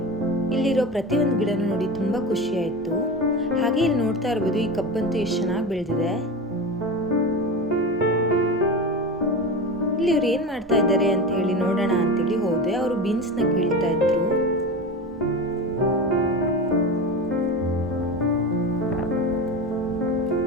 ಇಲ್ಲಿರೋ ಪ್ರತಿಯೊಂದು ಗಿಡನೂ ನೋಡಿ ತುಂಬ ಖುಷಿ ಆಯಿತು. ಹಾಗೆ ಇಲ್ಲಿ ನೋಡ್ತಾ ಇರ್ಬೋದು, ಈ ಕಬ್ಬಂತೂ ಎಷ್ಟು ಚೆನ್ನಾಗಿ ಬೆಳೆದಿದೆ. ಇಲ್ಲಿ ಇವ್ರು ಏನ್ ಮಾಡ್ತಾ ಇದ್ದಾರೆ ಅಂತ ಹೇಳಿ ನೋಡೋಣ ಅಂತೇಳಿ ಹೋದೆ. ಅವರು ಬೀನ್ಸ್ ನ ಕೀಳ್ತಾ ಇದ್ರು.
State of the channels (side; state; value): both; normal; correlation 0.25